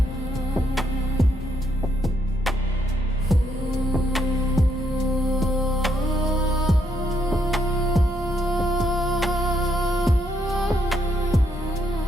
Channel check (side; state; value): both; normal; correlation 0.75